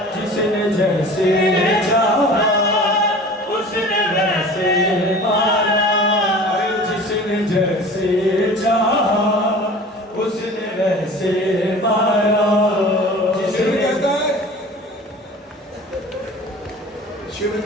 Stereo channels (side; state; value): both; normal; correlation 0.41